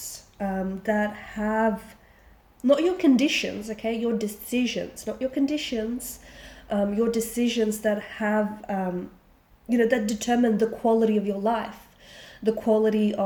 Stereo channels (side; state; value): both; identical; correlation 1.00